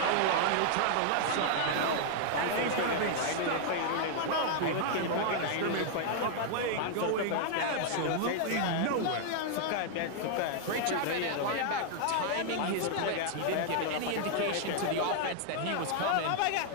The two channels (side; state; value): both; different; correlation -0.01